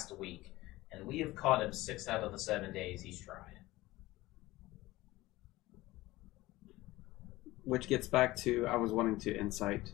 week, and we have caught him 6 out of the 7 days he's tried. Which gets back to, I was wanting to incite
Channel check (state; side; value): quieter; right; 18.4 dB